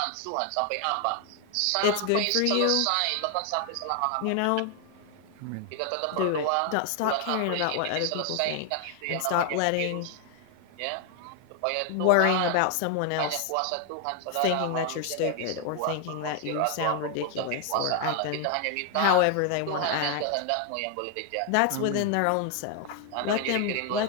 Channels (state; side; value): different; both; correlation 0.00